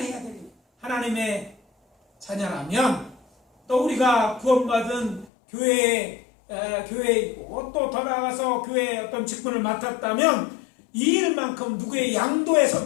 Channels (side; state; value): right; drops out; at 5.2 s